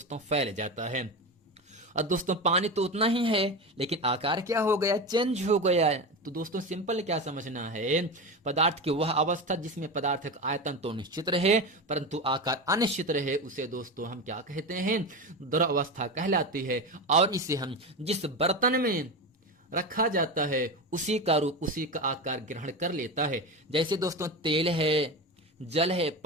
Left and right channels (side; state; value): both; normal; correlation 0.21